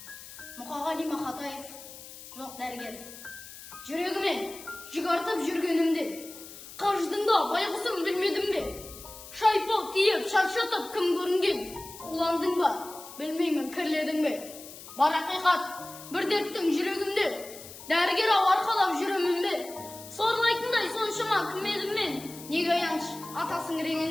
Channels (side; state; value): left; noise; hiss, 15 dB below the sound